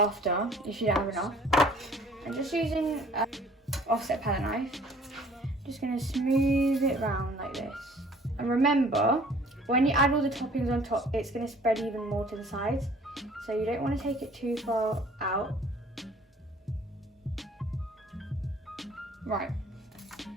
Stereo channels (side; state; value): both; normal; correlation 0.54